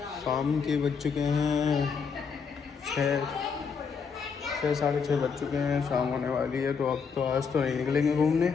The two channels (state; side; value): quieter; right; 5.8 dB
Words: शाम के बज चुके हैं 6 साढ़े 6 बज चुके हैं। शाम होने वाली है तो अब तो आज तो नहीं निकलेंगे घूमने।